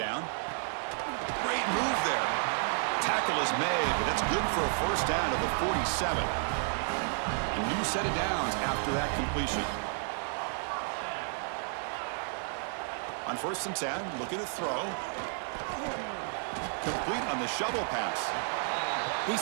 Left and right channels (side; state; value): left; silent; 57 dB below the other